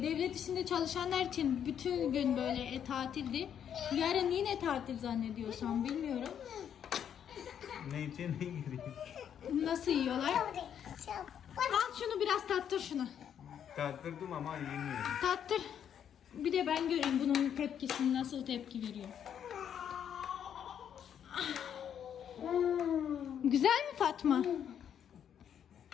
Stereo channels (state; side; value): quieter; right; 8.9 dB